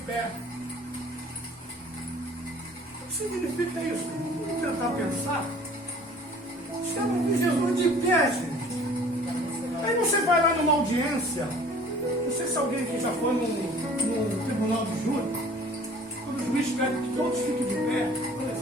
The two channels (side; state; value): both; normal; correlation 0.50